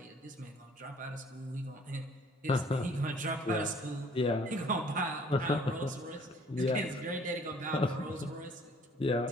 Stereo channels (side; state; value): both; normal; correlation 0.57